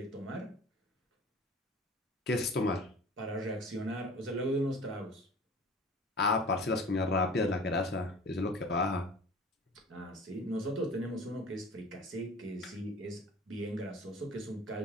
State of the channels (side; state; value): both; normal; correlation 0.42